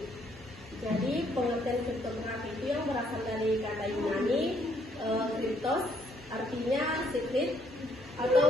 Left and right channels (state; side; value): normal; both; correlation 0.69